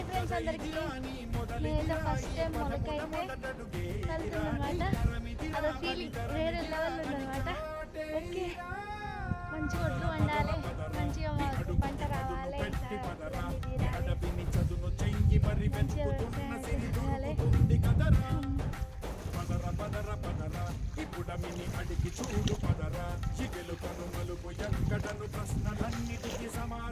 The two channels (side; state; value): both; identical; correlation 1.00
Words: ఫ్రెండ్స్ అందరికి, నేనైతే ఫస్ట్ టైం మొలకైతే కలుతుందన్నమాట. అదో ఫీలింగ్ వేరే లెవెల్ ఉందన్నమాట. ఓకే, మంచి ఒడ్లు వండాలి, మంచిగా మాకు పంట రావాలి, మంచిగా ఇప్పుడమిని అడిగి చూడు పదరా, ఇగెలు కనుమలు ఎక్కడను ప్రశ్నలన్నిటికీ